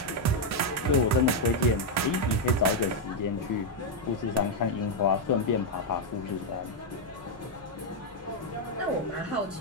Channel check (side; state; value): both; normal; correlation 0.01